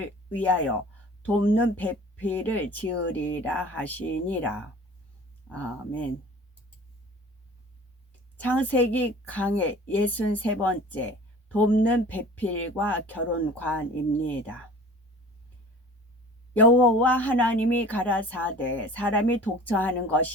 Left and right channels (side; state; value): both; normal; correlation 0.43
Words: 위하여 돕는 배필을 지으리라 하시니라. 아멘. 창세기 강의 63번째 돕는 배필과 결혼관입니다. 여호와 하나님이 가라사대 사람이 독처하는